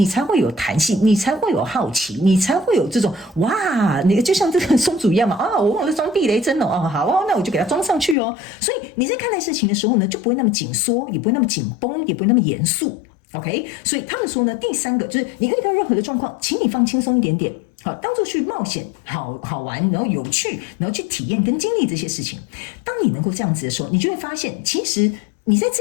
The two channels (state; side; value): drops out; right; at 8.2 s